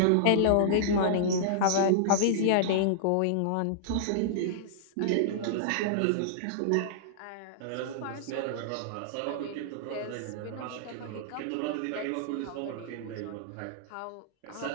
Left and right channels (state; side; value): different; both; correlation -0.02